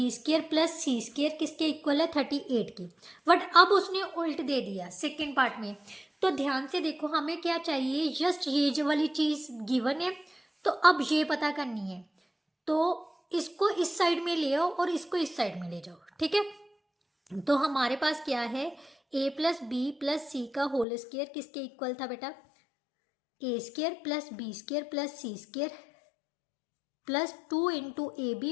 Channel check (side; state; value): right; drops out; at 20.9 s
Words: square plus C square किसके इक्वल है, 38 की। बट अब उसने उल्ट दे दिया सेकेंड पार्ट में। तो ध्यान से देखो, हमें क्या चाहिए, जस्ट ये जो वाली चीज़ गिवन है, तो अब ये पता करनी है। तो इसको इस साइड में ले आओ और इसको इस साइड में ले जाओ, ठीक है। तो हमारे पास क्या है, a प्लस बी प्लस सी का होल स्केयर किसके इक्वल था बेटा, ए square plus B square plus C square plus 2 into A B